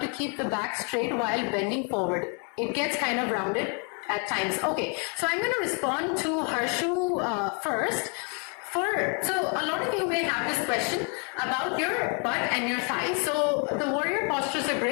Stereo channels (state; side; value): quieter; right; 37.4 dB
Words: keep the back straight while bending forward. It gets kind of rounded at times. Okay, so I'm going to respond to Harshu first. So a lot of you may have this question about your butt and your thighs. So the warrior postures are